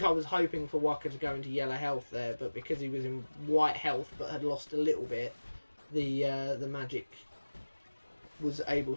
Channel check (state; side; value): inverted; both; correlation -1.00